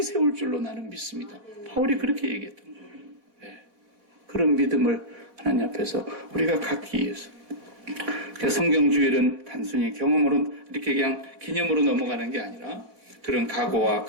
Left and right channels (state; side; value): late; left; 4.0 ms